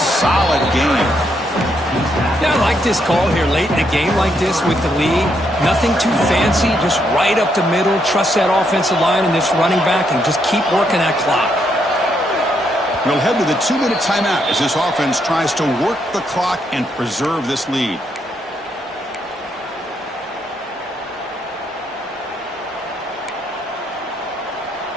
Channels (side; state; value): both; normal; correlation 0.76